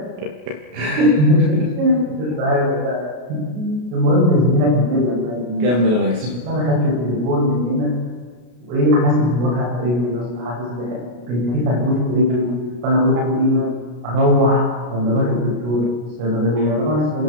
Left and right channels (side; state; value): left; late; 33 ms